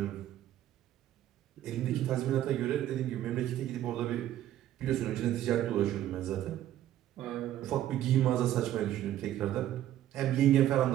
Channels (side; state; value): left; quieter; 12.5 dB